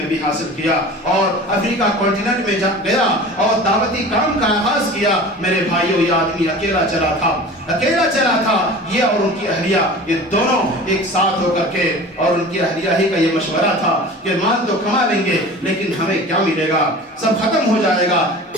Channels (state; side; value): normal; both; correlation 0.39